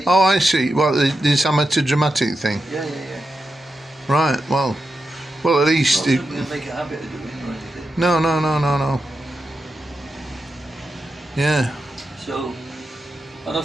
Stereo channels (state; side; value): normal; both; correlation 0.88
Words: Oh, I see. Well, this amateur dramatic thing. Yeah. Right. Well, at least. Not something to make a habit of doing or anything. No. Yeah. So, and I